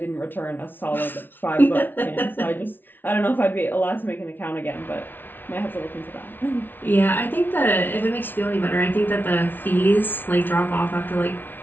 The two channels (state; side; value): late; right; 0.095 ms